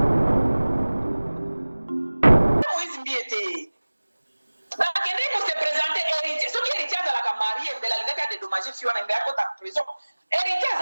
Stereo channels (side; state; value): both; inverted; correlation -1.00